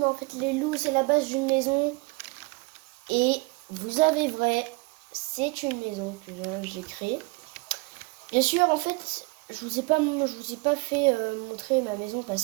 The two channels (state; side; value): quieter; left; 27.4 dB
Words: en fait les loups c'est la base d'une maison. Et vous avez vrai, c'est une maison que j'ai créée. Bien sûr, en fait, je vous ai pas fait montrer ma maison